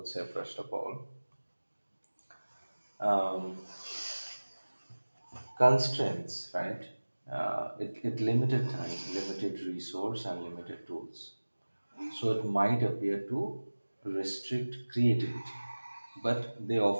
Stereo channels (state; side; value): inverted; both; correlation -1.00